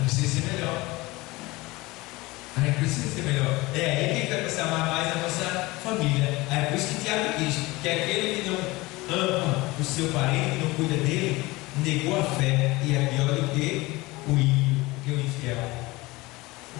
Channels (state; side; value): quieter; right; 21.6 dB